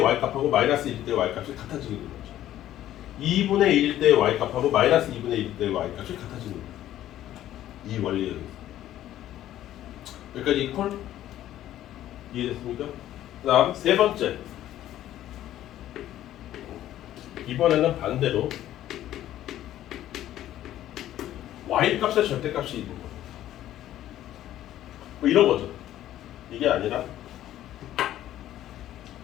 마이너스 1일 때의 y값이 같아지게 되는 거죠. 2분의 1일 때의 y값하고 마이너스 2분의 1일 때의 y값이 같아지는 거예요. 이 원리에 의해서. 여기까지 콜? 이해됐습니까? 그 다음 세 번째. 이번에는 반대로 y값의 절대값이 있는 거예요. 뭐 이런 거죠. 이게 아니라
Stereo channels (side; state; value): right; quieter; 12.8 dB